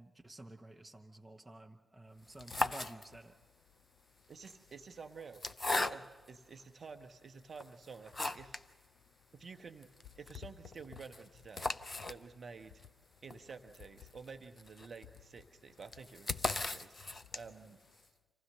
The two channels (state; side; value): normal; both; correlation 0.89